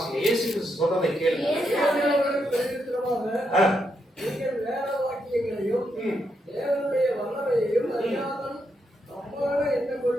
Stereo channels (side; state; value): both; normal; correlation 0.81